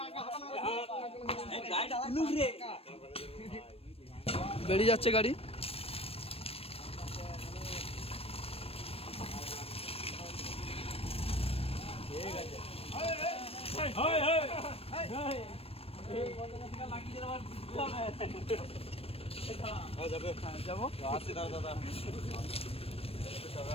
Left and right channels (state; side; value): late; right; 0.28 ms